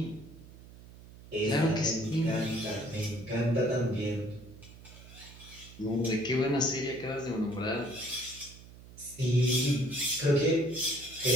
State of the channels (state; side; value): noise; right; hum, 19 dB below the sound